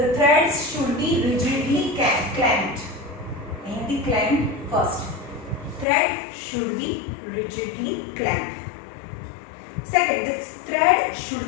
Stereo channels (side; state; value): right; drops out; at 5.9 s